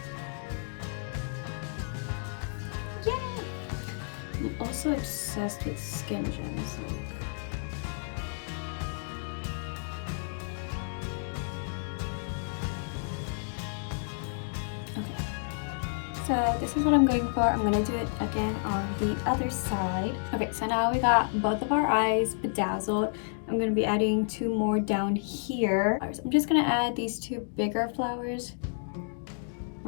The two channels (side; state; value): right; silent; digital silence